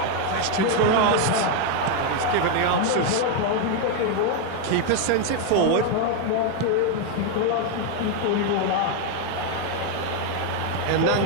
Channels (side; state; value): both; different; correlation 0.01